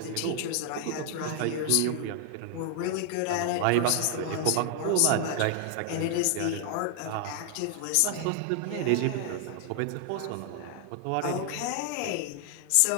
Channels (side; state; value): both; different; correlation 0.00